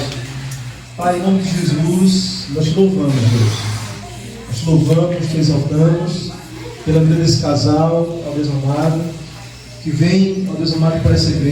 Pai, em nome de Jesus, nós te louvamos, Deus. Nós te te louvamos, te exaltamos pela vida desse casal, ó Deus amado, que vem, ó Deus amado, para essa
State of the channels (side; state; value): both; identical; correlation 1.00